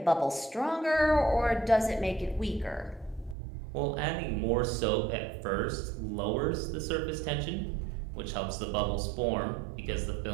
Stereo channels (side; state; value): left; drops out; at 3.4 s